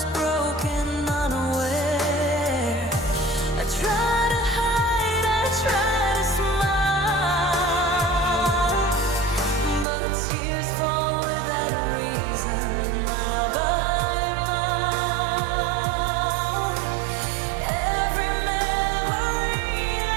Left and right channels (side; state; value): left; drops out; at 9.9 s